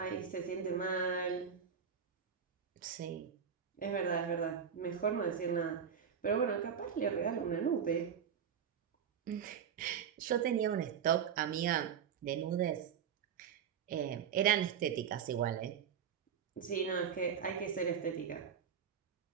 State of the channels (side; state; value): left; quieter; 7.6 dB